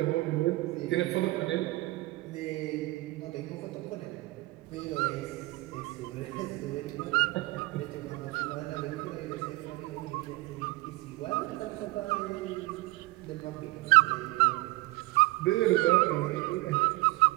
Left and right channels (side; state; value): left; quieter; 21.0 dB